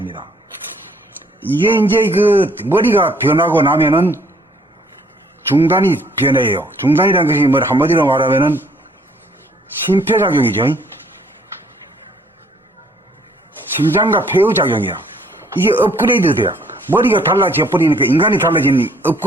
이게 이제 그 머리가 변하고 나면은 중단이 변해요. 중단이라는 것이 뭐 한마디로 말하면은 심폐작용이죠. 심장과 폐의 작용이야. 이게 업그레이드 돼요. 머리가 달라져 버리니까 인간이 달라지는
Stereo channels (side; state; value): both; normal; correlation 0.62